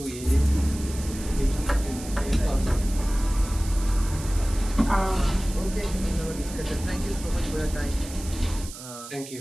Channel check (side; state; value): right; noise; hiss, 13 dB below the sound